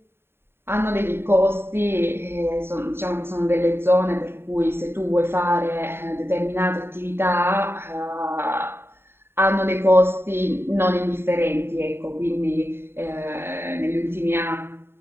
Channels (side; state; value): left; late; 0.11 ms